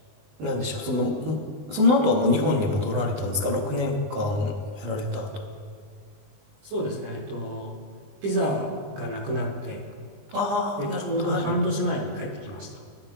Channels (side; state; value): left; late; 20 ms